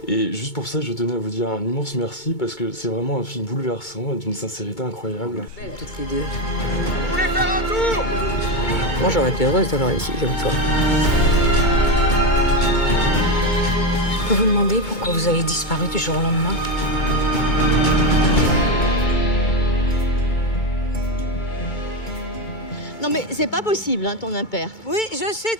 Et juste pour ça, je tenais à vous dire un immense merci parce que c'est vraiment un film bouleversant et d'une sincérité incroyable. Belles toutes les deux. Vous voulez faire un tour? Moi, j'aurais été heureuse d'avoir ici comme toi. Je peux vous demander pourquoi vous avez disparu du jour au lendemain? Non mais c'est pas possible, hein, ton impair. Oui, je sais,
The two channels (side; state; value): right; late; 2.2 ms